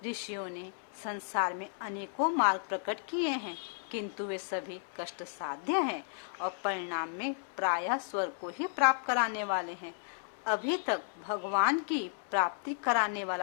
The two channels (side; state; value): right; silent; 55 dB below the other